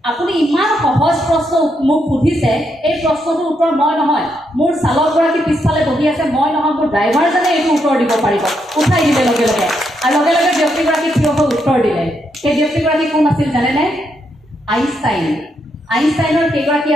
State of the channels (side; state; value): both; normal; correlation 0.79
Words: আপুনি ইমান সহজ প্ৰশ্ন মোক সুধিছে এই প্ৰশ্নটোৰ উত্তৰ মই নহয় মোৰ চালকগৰাকী পিছফালে বহি আছে মই নহয় মোৰ ড্ৰাইভাৰজনে এইটো উত্তৰ দিব পাৰিব উঠাই দিলে লগে লগে আৰু লগে লগে ব্যক্তিগৰাকী থিয় হৈ উত্তৰ দিলে সেই ব্যক্তিগৰাকী কোন আছিল জানেনে আইনষ্টাইনৰ সেইগৰাকী